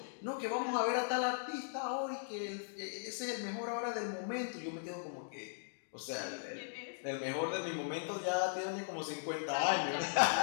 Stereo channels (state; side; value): silent; right; digital silence